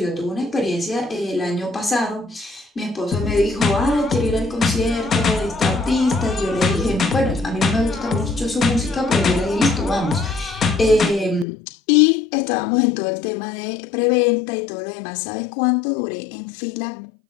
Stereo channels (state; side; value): drops out; right; at 11.5 s